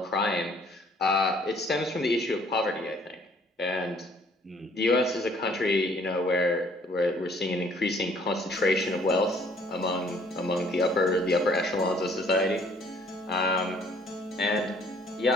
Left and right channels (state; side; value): normal; both; correlation 0.59